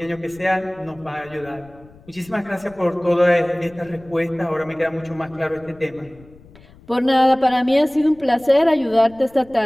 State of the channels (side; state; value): left; noise; rumble, 25 dB below the sound